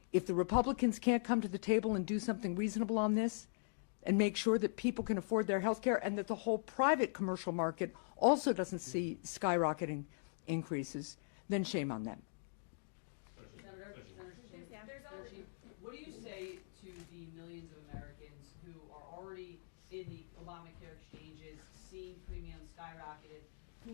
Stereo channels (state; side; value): silent; right; digital silence